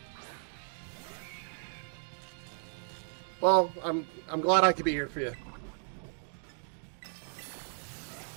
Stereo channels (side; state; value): left; silent; 55 dB below the other